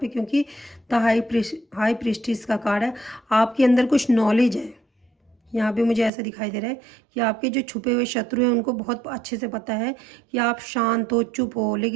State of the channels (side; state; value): left; drops out; at 6.1 s